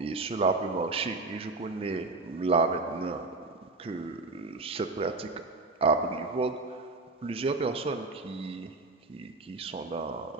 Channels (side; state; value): left; quieter; 3.4 dB